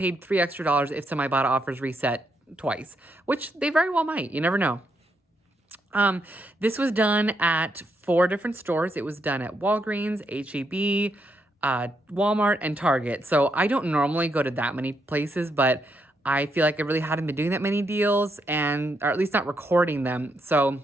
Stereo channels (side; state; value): both; normal; correlation 0.78